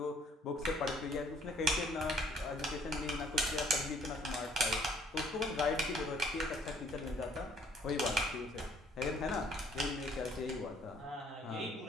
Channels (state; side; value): normal; both; correlation 0.61